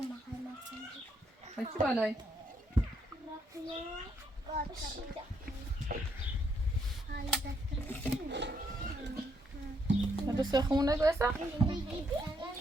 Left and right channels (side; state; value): both; normal; correlation 0.74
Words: چی بالای بس خمونه گوسا